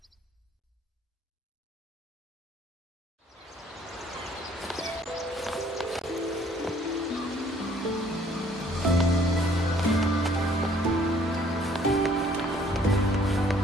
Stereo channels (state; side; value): normal; both; correlation 0.60